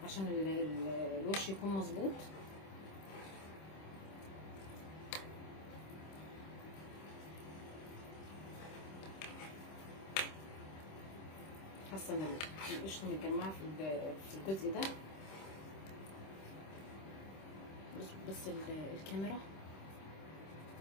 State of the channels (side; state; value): right; late; 26 ms